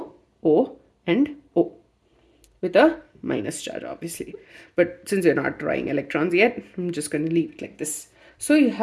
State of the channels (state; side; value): identical; both; correlation 1.00